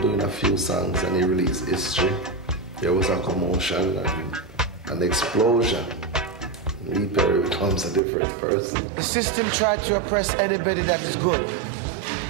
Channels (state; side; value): drops out; left; at 8.0 s